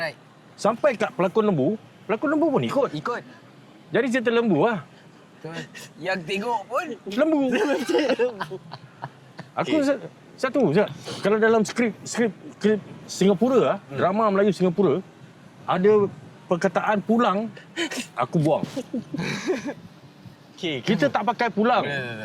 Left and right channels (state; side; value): identical; both; correlation 1.00